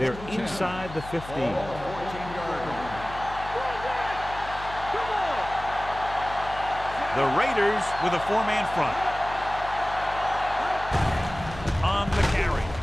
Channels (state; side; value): noise; left; hum, 13 dB below the sound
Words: inside the 15. 14-yard line. The Raiders with a 4-man front. On the carry.